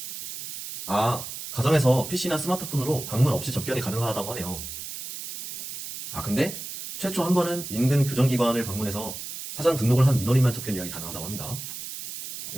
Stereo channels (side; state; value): right; noise; hiss, 9 dB below the sound